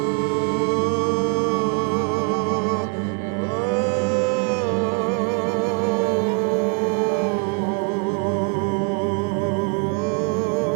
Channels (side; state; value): left; quieter; 36.5 dB